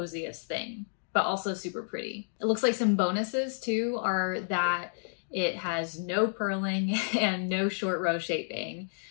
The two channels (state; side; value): silent; right; digital silence